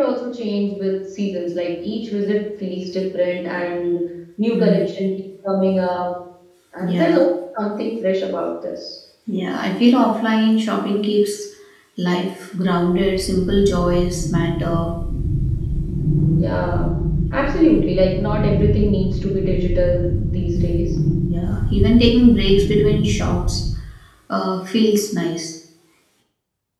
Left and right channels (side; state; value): both; identical; correlation 1.00